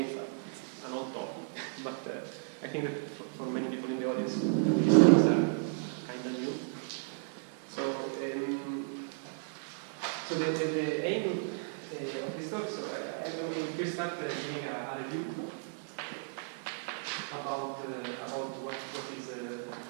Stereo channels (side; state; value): left; silent; digital silence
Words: it's an old topic, but I think that for many people in the audience, these things are kind of new. So the aim of this talk, so I'm going to start giving a review about what is a